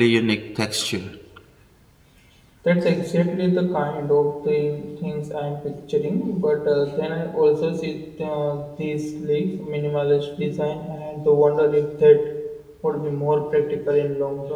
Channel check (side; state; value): both; identical; correlation 1.00